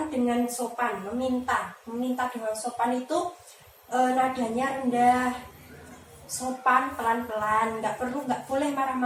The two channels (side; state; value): both; identical; correlation 1.00